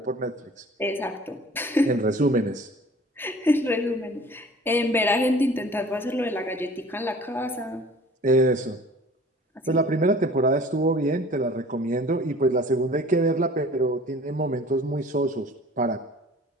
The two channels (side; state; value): both; normal; correlation 0.47